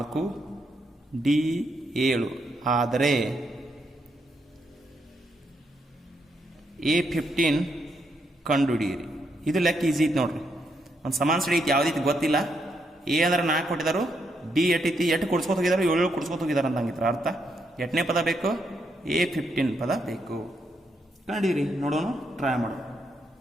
D7 ಆದರೆ A15 ಕಂಡುಹಿಡಿಯಿರಿ. ಇದು ಲೆಕ್ಕ ಈಸಿ ಐತಿ ನೋಡ್ರಿ. ಒಂದು ಸಮಾನ ಶ್ರೇಣಿ ಐತಿ, ಯಾವುದೈತಿ ಗೊತ್ತಿಲ್ಲ. ಎ ಅಂದ್ರೆ 4 ಕೊಟ್ಟಿದ್ದಾರೆ, ಡಿ ಎಟ್ಟೈತಿ, 8 ಕೊಡ್ಸ್ಕೊತ ಹೋಗಿದ್ದಾರೆ, 7 ಕೊಡ್ಸ್ಕೊತ ಹೋಗಿದ್ದಾರೆ ಅಂತ ಹಂಗಿತ್ರ ಅರ್ಥ. 8ನೇ ಪದ ಬೇಕು, A15 ಪದ ಬೇಕು. ಕಂಡಿರಿ, ನೋಡೋಣ, ಟ್ರೈ ಮಾಡೋಣ.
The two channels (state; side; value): normal; both; correlation 0.78